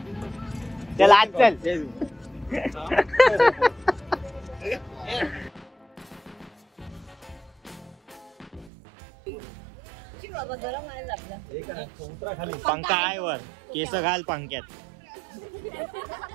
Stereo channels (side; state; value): left; drops out; at 8.7 s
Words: चल आज चल. पंखा आहे वर, केस घाल पंख्यात.